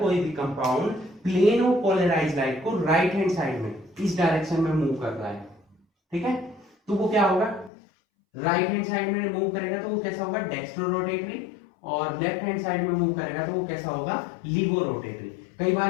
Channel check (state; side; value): drops out; right; at 7.7 s